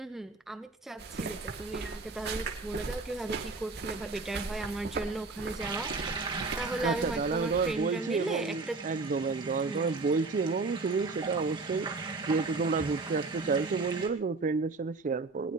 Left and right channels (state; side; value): quieter; left; 3.8 dB